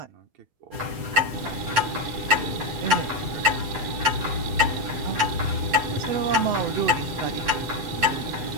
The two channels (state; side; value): late; left; 7.9 ms